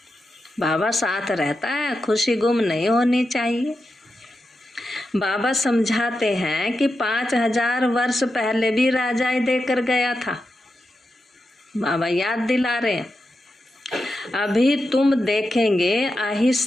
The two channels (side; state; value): both; normal; correlation 0.89